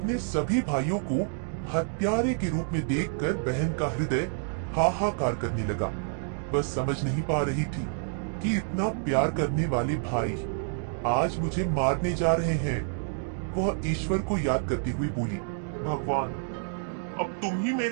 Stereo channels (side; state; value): left; silent; digital silence